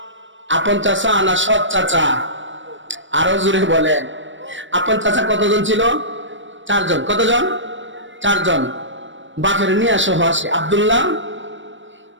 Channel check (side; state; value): left; late; 0.55 ms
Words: আপন চাচা না সৎ চাচা? আরো জোরে বলেন। আপন চাচা কতজন ছিল? 4 জন। কতজন? 4 জন। বাপের নিয়া সহ আসে, আব্দুল্লাহ,